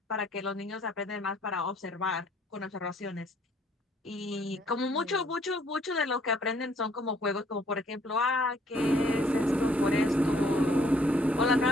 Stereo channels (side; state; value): both; normal; correlation 0.63